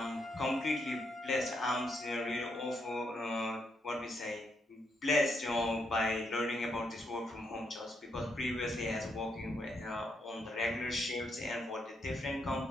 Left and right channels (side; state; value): both; normal; correlation 0.78